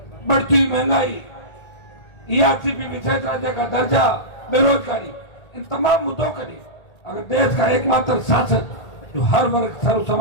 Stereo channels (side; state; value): right; late; 1.8 ms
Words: बढ़ती हुई महंगाई, ERCP विशेष राज्य का दर्जा, बेरोजगारी, इन तमाम मुद्दों के लिए अगर देश का एकमात्र शासक जो हर वर्ग सर्व